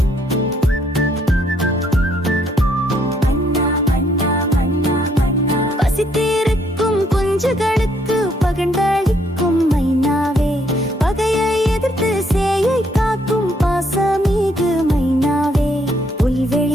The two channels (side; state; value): both; normal; correlation 0.70